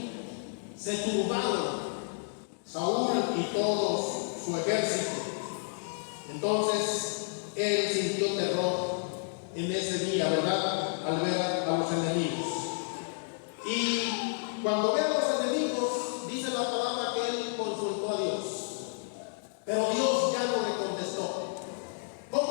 se turbaron Saúl y todo su ejército. Entonces él sintió terror en ese día, ¿verdad? Al ver a los enemigos. Y cuando ve a los enemigos, dice la palabra que él consultó a Dios, pero Dios ya no le contestó.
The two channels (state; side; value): silent; right; digital silence